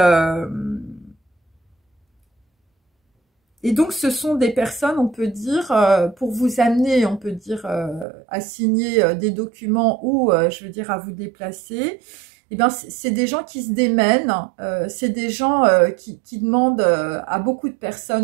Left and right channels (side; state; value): left; drops out; at 8.1 s